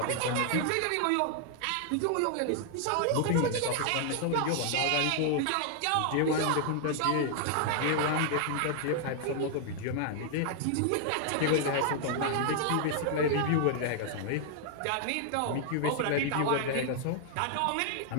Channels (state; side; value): different; both; correlation 0.00